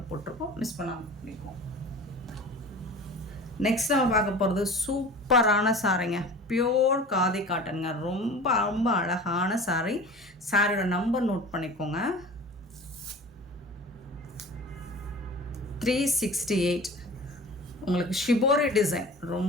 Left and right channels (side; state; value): both; normal; correlation 0.39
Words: போட்டிருக்கோம். மிஸ் பண்ணாமல் பண்ணிக்கோம். நெக்ஸ்ட் நம்ம பார்க்க போகிறது சூப்பரான சாரீங்க. பியோர் காதி காட்டனுங்க. ரொம்ப ரொம்ப அழகான சாரீ. சாரியோட நம்பர் நோட் பண்ணிக்கோங்க. 368. உங்களுக்கு ஷிபோரி டிசைன்